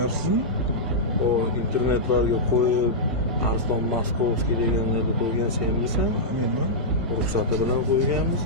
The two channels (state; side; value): normal; both; correlation -0.10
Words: O internetlarga qo'yib Arslon Maskovskiy deganlarni qo'ygan senmisan? Menman. Ruxsati bilan